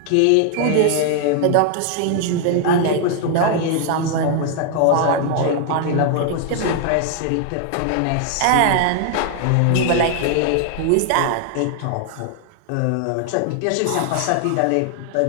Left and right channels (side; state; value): both; different; correlation 0.00